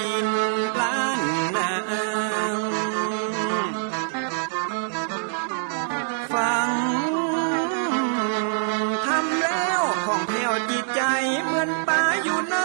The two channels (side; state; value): left; silent; digital silence